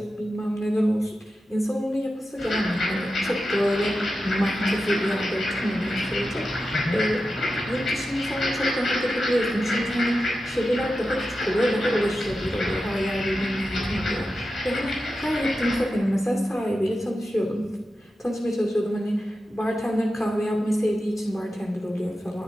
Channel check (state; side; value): normal; both; correlation 0.91